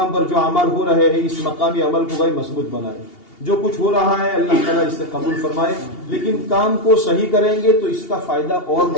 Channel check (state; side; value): late; right; 2.8 ms